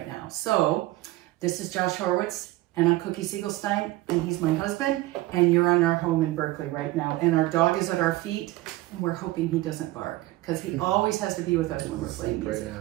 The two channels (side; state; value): left; quieter; 18.0 dB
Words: now. So, this is Josh Horowitz, and I'm Cookie Segelstein, and he's my husband, and you're on our home in Berkeley right now. And our dog is at our feet, and we're hoping he doesn't bark, because he always has to be with us when we're playing music.